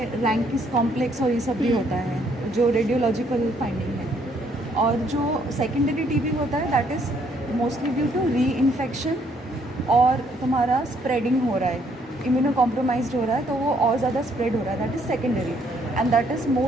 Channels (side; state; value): both; normal; correlation 0.68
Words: रैंकिस कॉम्प्लेक्स और ये सब भी होता है जो रेडियोलॉजिकल फाइंडिंग है। और जो सेकेंडरी टीबी होता है that is mostly due to reinfection और तुम्हारा स्प्रेडिंग हो रहा है, इम्यूनो कॉम्प्रोमाइज्ड हो रहा है तो वो और ज़्यादा स्प्रेड हो रहा है, that is secondary and that is